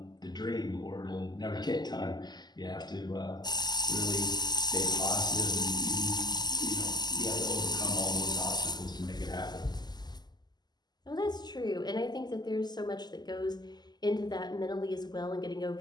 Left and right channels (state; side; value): late; right; 0.20 ms